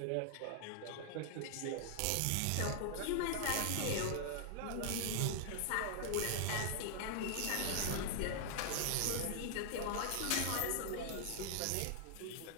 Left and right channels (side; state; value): both; different; correlation 0.00